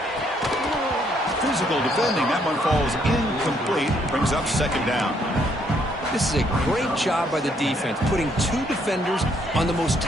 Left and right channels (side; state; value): both; normal; correlation 0.70